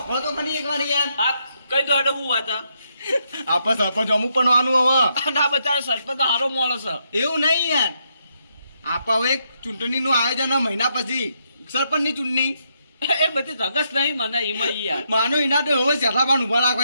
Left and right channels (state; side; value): inverted; both; correlation -0.78